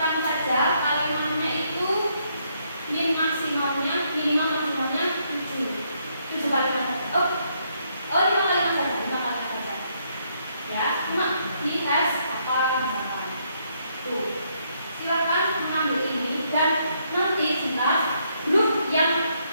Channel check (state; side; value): inverted; both; correlation -0.73